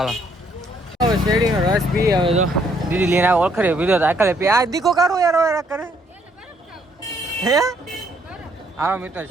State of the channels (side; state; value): both; normal; correlation 0.68